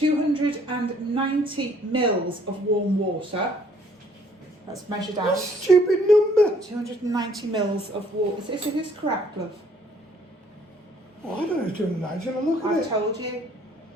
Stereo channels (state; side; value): normal; both; correlation 0.62